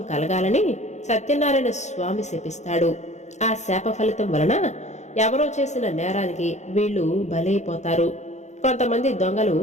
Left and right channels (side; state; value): right; late; 0.33 ms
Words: కలగాలని సత్యనారాయణ స్వామి శపిస్తాడు. ఆ శాప ఫలితం వలన ఎవరో చేసిన నేరానికి వీళ్లు బలైపోతారు. కొంతమంది దొంగలు